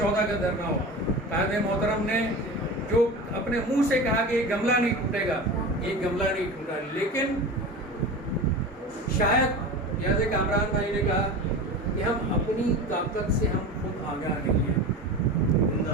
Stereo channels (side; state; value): both; normal; correlation 0.31